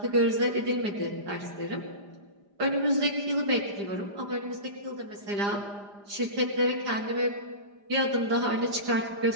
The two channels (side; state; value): left; late; 4.9 ms